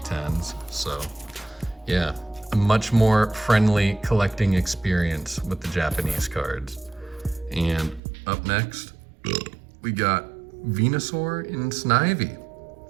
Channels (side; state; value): left; drops out; at 8.0 s